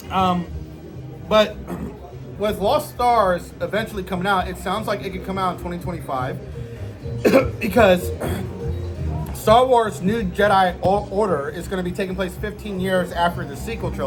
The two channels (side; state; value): both; identical; correlation 1.00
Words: with Lost Stars eventually coming out, it sounds like it could come out in 2025 because Star Wars New Jedi Order is going to be taking place 15 years after the sequel